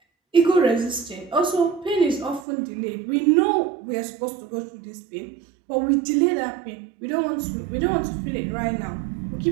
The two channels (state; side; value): drops out; left; at 2.5 s